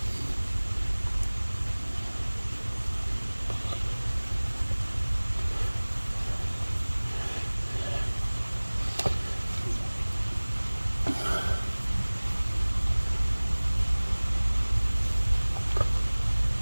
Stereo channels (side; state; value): both; inverted; correlation -1.00